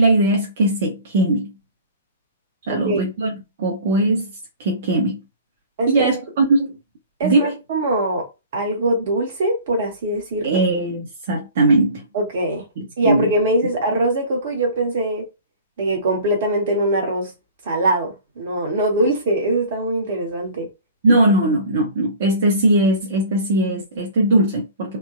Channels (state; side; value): inverted; both; correlation -0.45